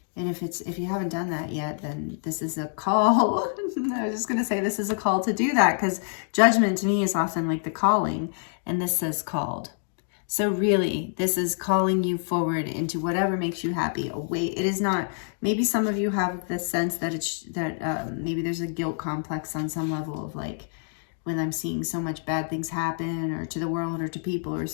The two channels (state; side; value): silent; right; digital silence